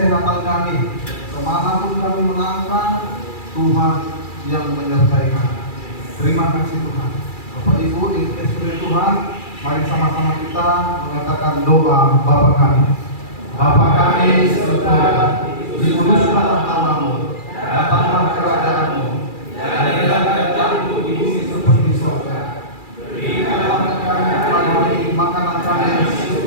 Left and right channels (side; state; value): right; late; 2.3 ms